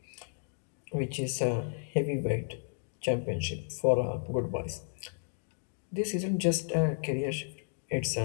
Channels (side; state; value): right; silent; digital silence